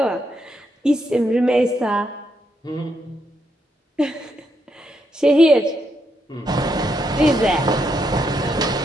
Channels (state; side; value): normal; both; correlation 0.79